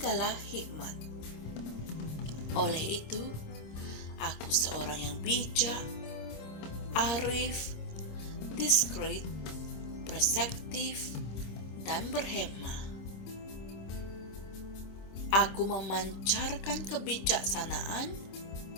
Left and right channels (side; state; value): right; late; 26 ms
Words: hikmat. Oleh itu, aku seorang yang bijak, arif, diskret, perspektif, dan berhema. Aku memancarkan kebijaksanaan